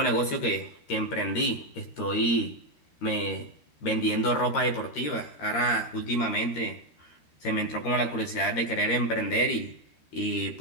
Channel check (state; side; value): late; right; 13 ms